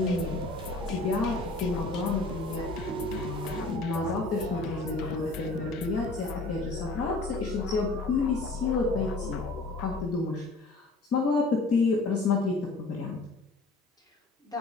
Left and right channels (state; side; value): quieter; right; 3.2 dB